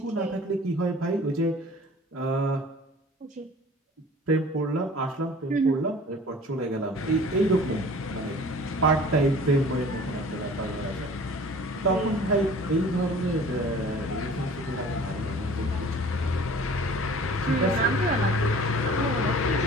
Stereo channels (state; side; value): normal; both; correlation 0.46